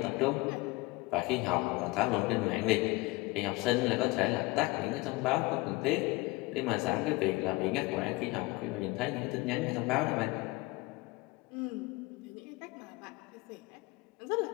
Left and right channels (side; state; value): right; quieter; 23.1 dB